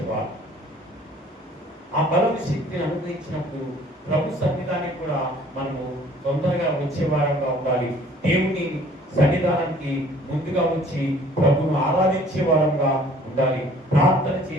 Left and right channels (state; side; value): normal; both; correlation 0.54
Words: ఆ బలము, శక్తిని అనుగ్రహించినప్పుడు ప్రభు సన్నిధానికి కూడా మనము తొందరగా వచ్చేవారంగా ఉండాలి. దేవుని సన్నిధానానికి ముందుగా వచ్చి ప్రభును ఆరాధించే వారంగా ఉండాలి. ప్రార్థన